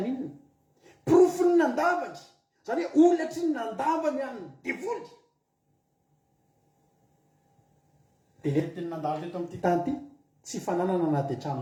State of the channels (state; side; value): identical; both; correlation 1.00